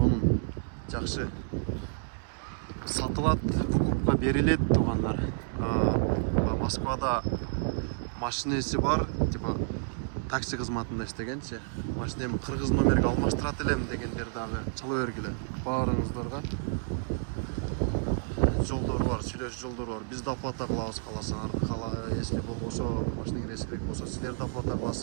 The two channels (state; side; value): silent; left; digital silence